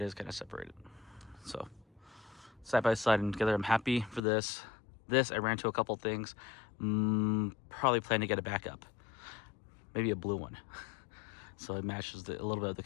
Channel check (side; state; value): right; drops out; at 4.2 s